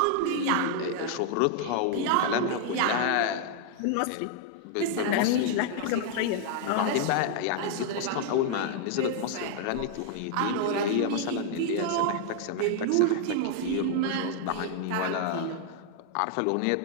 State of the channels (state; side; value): different; both; correlation 0.00